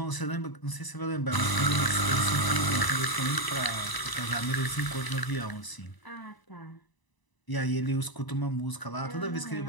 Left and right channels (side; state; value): right; late; 1.0 ms